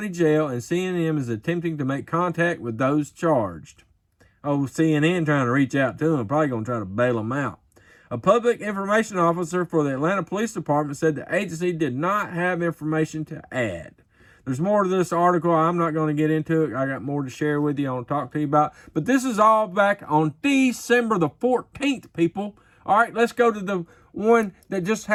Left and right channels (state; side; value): identical; both; correlation 1.00